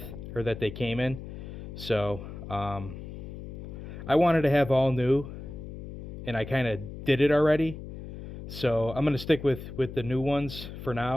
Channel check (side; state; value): left; noise; hum, 11 dB below the sound